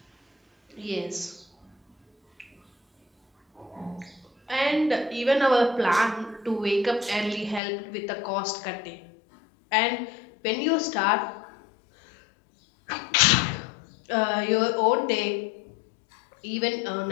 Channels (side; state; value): right; drops out; at 7.6 s